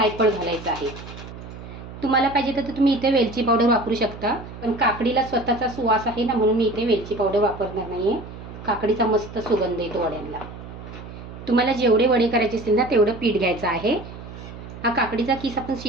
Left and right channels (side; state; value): right; noise; hum, 13 dB below the sound